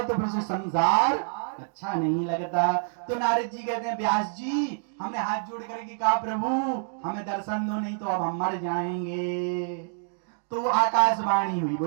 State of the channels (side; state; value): left; silent; digital silence